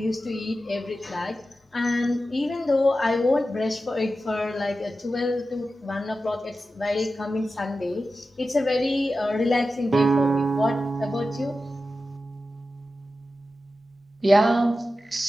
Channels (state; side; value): normal; both; correlation 0.92